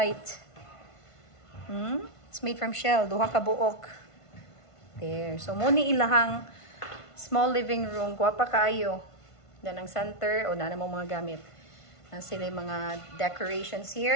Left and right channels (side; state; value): right; late; 1.5 ms